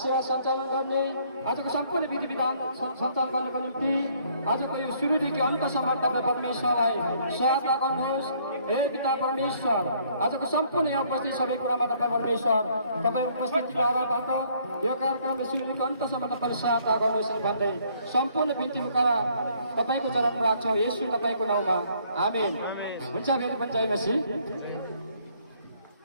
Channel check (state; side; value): inverted; both; correlation -0.64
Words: सञ्चालन गर्ने, आजको सम्पूर्ण विधि विधान सञ्चालन गर्नको निम्ति आजको यो सुरुदेखि अन्तसम्म तपाईँ परमेश्वरलाई सहायता गर्नुहोस्। हे पिता परमेश्वर, आजको सम्पूर्ण यहाँ उपस्थित सबै कुरामा तपाईँ परमेश्वर तपाईँ उपस्थितिबाट यो कार्यक्रमलाई सुरुदेखि अन्तसम्म तपाईँले सहायता गर्नुहोस् भन्दै सम्पूर्ण बिन्ती मुखा तपाईँको चरण राख्छौँ येशू तपाईँको नाउँमा, आमेन। हुन्छ। फेरि पनि जय मसीह।